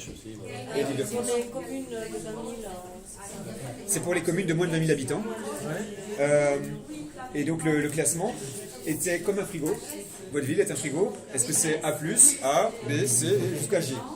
aussi. Et l'Île-de-France. Pour les communes de 20 000, C'est pour les communes de moins de 20 000 habitants. Et donc le classement était comme un frigo. Votre ville est un frigo. Est-ce que c'est A+, A, B, C, jusqu'à G?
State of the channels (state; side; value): identical; both; correlation 1.00